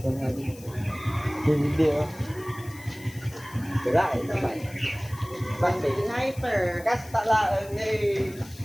nga. Hindi oh. Wala ito ba? Basta Sniper. kasta lang eh.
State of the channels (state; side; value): noise; left; hiss, 20 dB below the sound